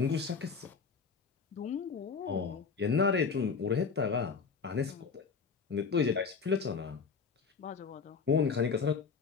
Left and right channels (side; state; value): right; quieter; 5.4 dB